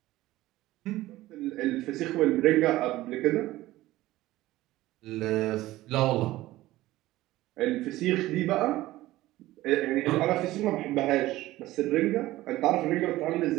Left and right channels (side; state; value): left; quieter; 16.7 dB